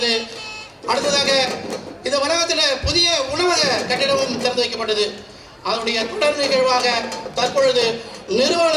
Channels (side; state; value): both; identical; correlation 1.00